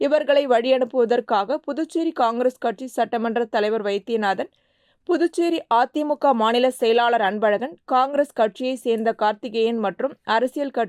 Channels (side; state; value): both; identical; correlation 1.00